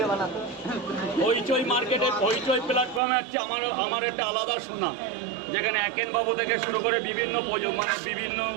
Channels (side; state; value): left; drops out; at 3.0 s